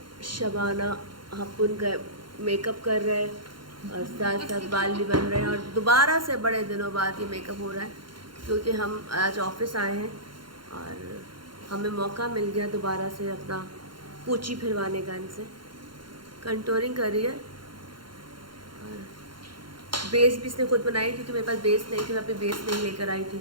शबाना हपुन का मेकअप कर रहे हैं और साथ साथ बाल भी बन रहे हैं और दोबारा से बड़े दिनों बाद ये मेकअप हो रहा है क्योंकि हम आज ऑफिस आए हैं और हमें मौका मिल गया दोबारा से अपना पूंछी फिरवाने का। इनसे कंटूरिंग कर रही है और बेस भी इसने खुद बनाई क्योंकि मेरे पास बेस नहीं थी, मैं अपनी बेस नहीं लेकर आई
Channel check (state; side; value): late; left; 0.72 ms